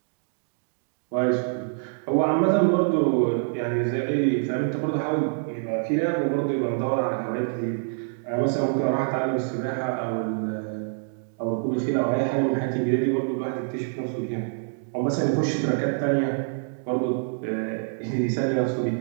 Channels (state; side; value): silent; left; digital silence